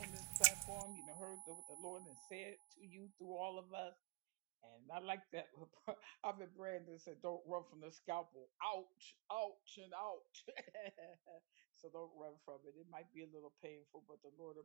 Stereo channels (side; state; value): left; quieter; 29.2 dB